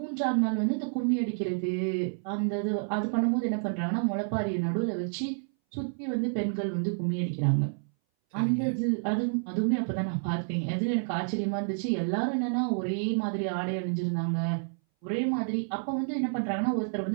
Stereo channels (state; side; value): silent; left; 58 dB below the other